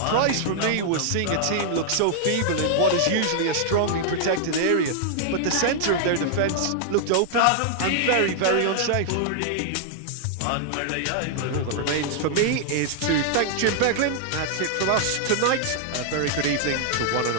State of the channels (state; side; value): different; both; correlation -0.01